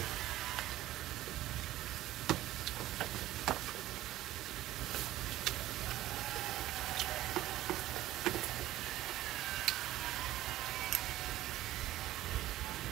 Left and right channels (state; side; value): quieter; left; 15.0 dB